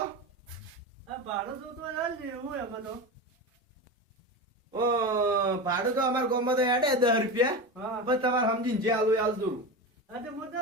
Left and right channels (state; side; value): normal; both; correlation 0.23